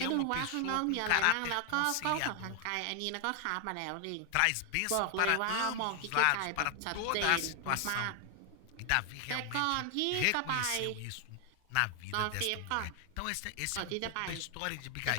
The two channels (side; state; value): both; different; correlation 0.00